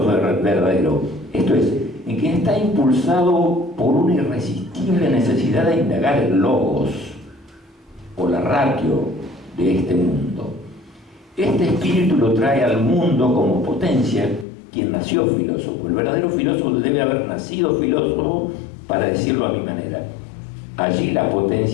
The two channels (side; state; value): right; drops out; at 14.5 s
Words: verdadero, esto es, en quien está impulsado por una irresistible necesidad de indagar el logos o la ratio de este mundo. Este espíritu lo trae al mundo como potencia quien nació filósofo. El verdadero filósofo debe haber nacido filósofo, para decirlo a mi manera. Allí la